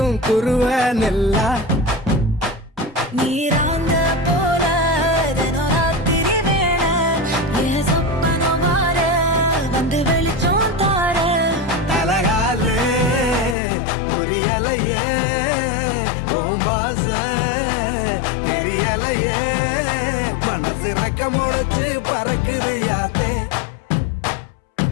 குருவ நெல்லா நீராங்க போல ராத்திரி வேண என் சொப்பனம் மாற வந்து வெளிச்சம் தார தலகாலே பொரியலையே ஓம்பாச பெரியலையே மனசு ரக்க முளைச்சு பறக்குது யாத்தே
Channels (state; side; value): drops out; right; at 13.6 s